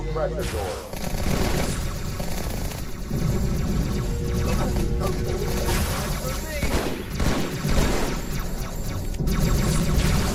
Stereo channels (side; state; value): both; identical; correlation 1.00